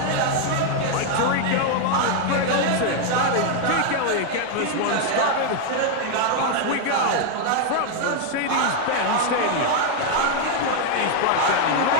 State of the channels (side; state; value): both; different; correlation 0.00